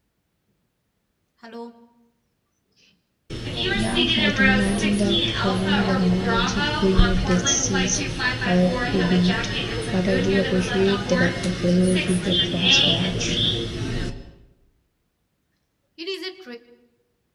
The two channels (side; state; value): both; identical; correlation 1.00